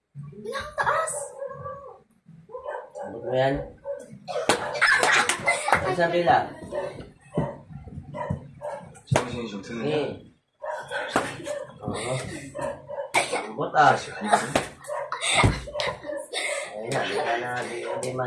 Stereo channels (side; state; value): both; identical; correlation 1.00